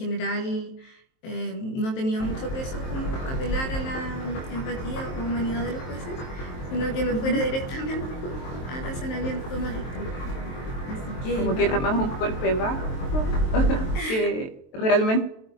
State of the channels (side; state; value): right; late; 23 ms